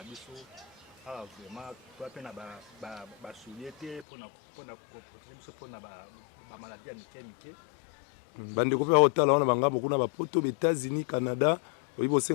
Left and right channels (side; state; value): right; drops out; at 4.0 s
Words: biso. Ah, vraiment, toi, tu as soulié pour la maladie à Miké. Bandeko pe hotala wana banga beaucoup na ba poto États-Unis, Canada, oyi